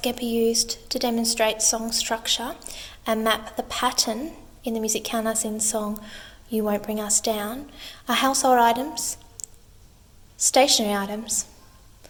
be used to demonstrate song structure and map the pattern in the music countersign song You Won't Bring Us Down are household items, stationary items,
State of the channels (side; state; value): both; identical; correlation 1.00